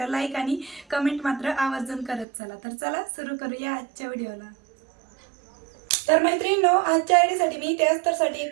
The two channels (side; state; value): left; drops out; at 2.2 s